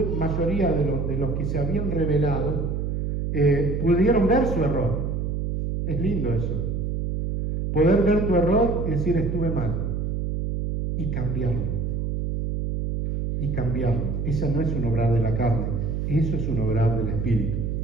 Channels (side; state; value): right; noise; hum, 1 dB below the sound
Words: mayoría de los que se habían rebelado pudieron ver su error. Es lindo eso. Poder ver tu error y decir estuve mal. Y cambiarlo. Y cambiarlo. Esa no es un obrar de la carne. Eso es un obrar del Espíritu.